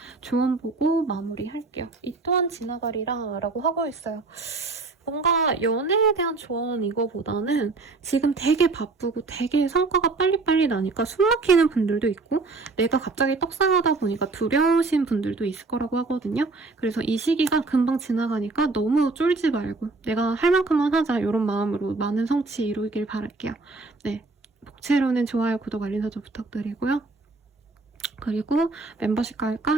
조언 보고 마무리할게요. 이 또한 지나가리라 라고 하고 있어요. 뭔가 연애에 대한 조언 이거보다는 지금 되게 바쁘고 되게 성과가 빨리빨리 나니까 숨 막히는 분들도 있고 내가 갑자기 떡상하다 보니까 두려우신 분들도 있을 거라고 하거든요. 그래서 이 시기가 금방 지나가니까 너무 쫄지 말고 내가 할 만큼만 하자 이런 마음으로 많은 성취 이루길 바랄게요. 네, 복채로는 좋아요, 구독, 알림 설정 부탁드리고요. 그리고 멤버십 가입과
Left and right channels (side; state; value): left; quieter; 3.7 dB